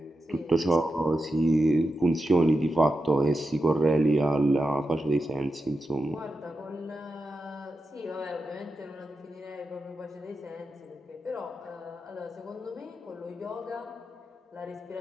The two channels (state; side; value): normal; both; correlation 0.89